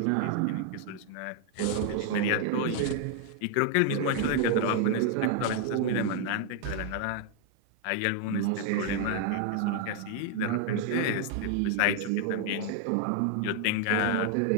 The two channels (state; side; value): different; both; correlation 0.00